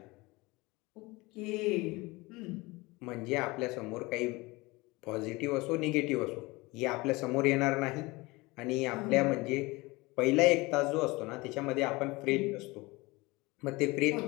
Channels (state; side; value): quieter; right; 22.9 dB